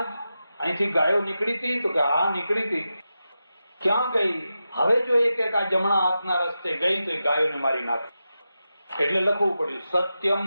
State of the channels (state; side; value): inverted; both; correlation -0.90